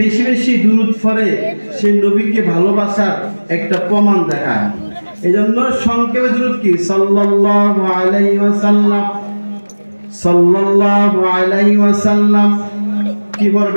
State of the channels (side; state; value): both; inverted; correlation -1.00